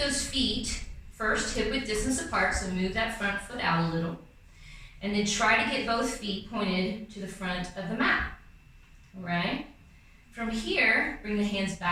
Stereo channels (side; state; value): both; identical; correlation 1.00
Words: feet first hip-width distance apart, so move that front foot out a little. And then try to get both feet pointed to the front of the mat, all right? From here, bring the hands